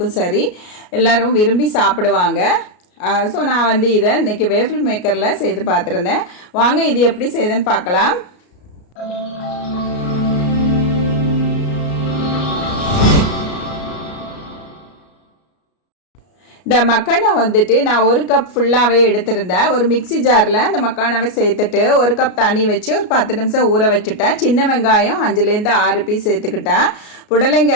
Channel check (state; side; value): late; right; 33 ms